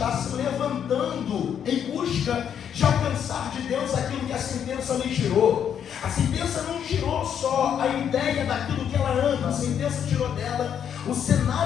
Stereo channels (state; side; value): quieter; right; 8.6 dB